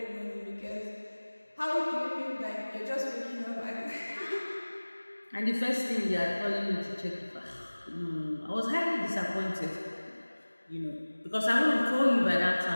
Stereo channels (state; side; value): inverted; both; correlation -1.00